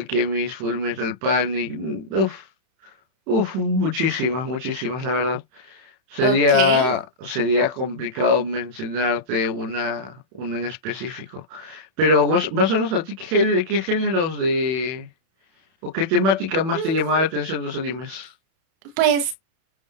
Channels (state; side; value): late; left; 31 ms